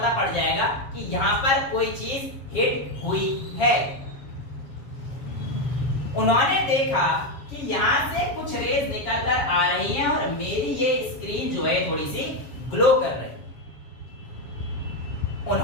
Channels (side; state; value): right; late; 7.4 ms